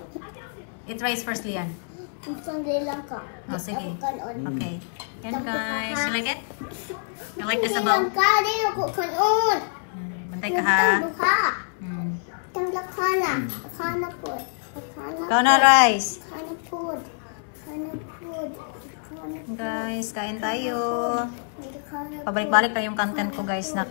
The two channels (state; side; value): silent; right; 59 dB below the other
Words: Eat rice first, Lian. Isang bilang ka. Oh, sige. Ako kanon. Okay. Yan guys. You like it? You like the Bilang sabaw? ka, di ako kanon. Bantay ka ha. Tang duha. Mm. Tang lakana. Lakana po. Lakana Ikaw na rice. Lakana po. Lakana po. Guys, kain tayo. Lakana po. Pabalik-balik na yung content ko guys.